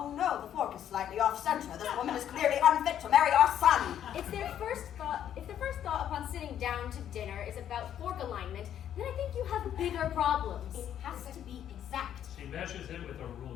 no, the fork is slightly off center. This woman is clearly unfit to marry our son. If their first thought upon sitting down to dinner is about fork alignment, then I think you have bigger problems. It has to be exact. She measures it with a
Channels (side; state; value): right; quieter; 10.2 dB